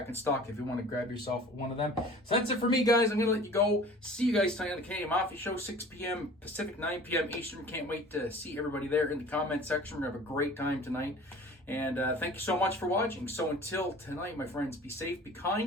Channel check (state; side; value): normal; both; correlation 0.44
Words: in stock if you want to grab yourself one of them. So that's it for me, guys. I'm going to let you go. See you guys tonight on the Canadian Mafia Show, 6 p.m. Pacific, 9 p.m. Eastern. Can't wait to see everybody there in the comment section. We're going to have a great time tonight. And thank you so much for watching. So until tonight, my friends, be safe, be